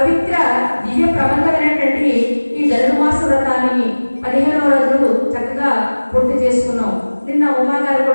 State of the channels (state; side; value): inverted; both; correlation -1.00